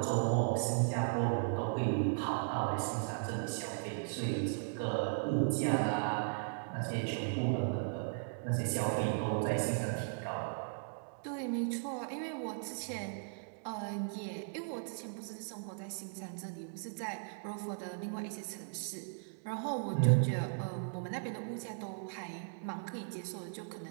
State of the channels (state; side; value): silent; left; digital silence